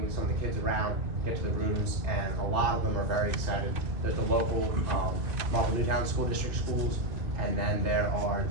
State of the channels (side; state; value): left; late; 2.6 ms